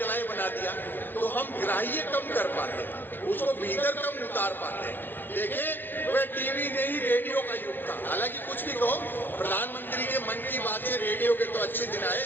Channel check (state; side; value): late; right; 0.095 ms